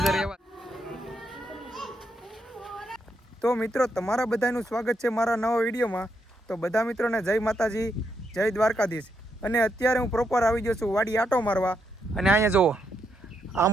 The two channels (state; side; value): normal; both; correlation 0.80